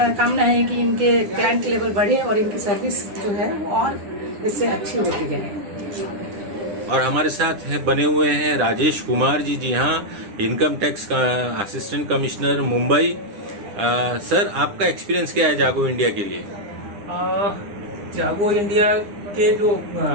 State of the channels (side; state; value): left; late; 9.9 ms